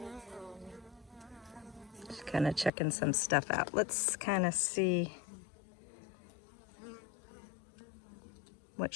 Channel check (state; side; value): drops out; right; at 2.7 s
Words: She's kind of checking some stuff out. Let's kind of see what